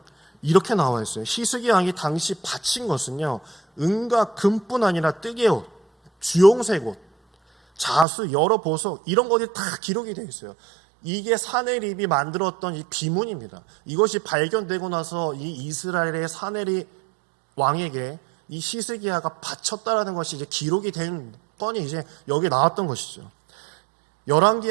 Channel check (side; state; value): left; drops out; at 8.1 s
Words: 이렇게 나와 있어요. 히스기야 왕이 당시 바친 것은요, 은과 금뿐 아니라 뜨개옷, 주홍색 옷, 자수, 여러 보석, 이런 것이 다 기록이 되어 있어요. 이게 사네립이 만들었던 이 비문입니다. 이것이 발견되고 나서 이 이스라엘의 사네립 왕에게 이 히스기야가 바쳤다라는 것이 이제 기록이 된 건이 이제 여기 나왔던 것이죠.